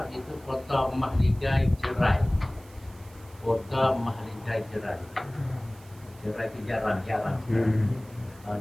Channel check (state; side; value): noise; right; hiss, 25 dB below the sound